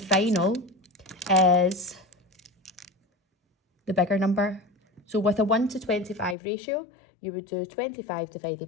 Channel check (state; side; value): drops out; right; at 6.4 s